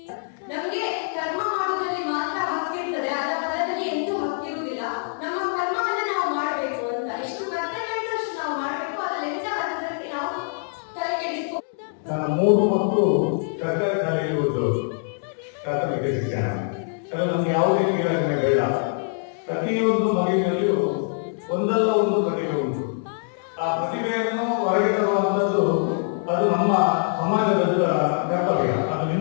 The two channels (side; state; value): right; silent; 62 dB below the other